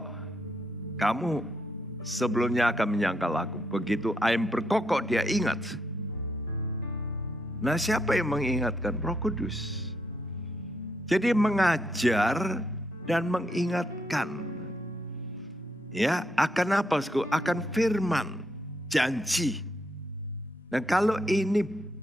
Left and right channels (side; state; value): both; normal; correlation 0.77